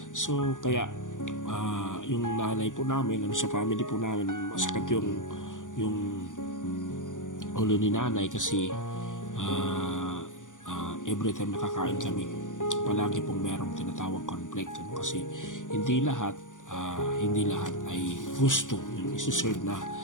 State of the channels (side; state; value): right; late; 0.87 ms